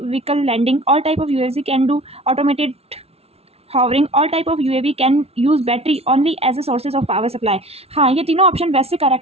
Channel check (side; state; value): left; late; 0.30 ms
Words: vehicle landing, all type of UAV can do automated hovering, all type of UAV can use battery only as a sources of power supply। हाँ, ये तीनों option वैसे